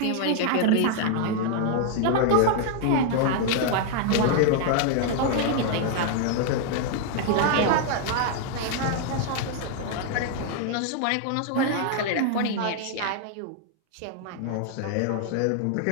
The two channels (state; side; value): different; both; correlation 0.00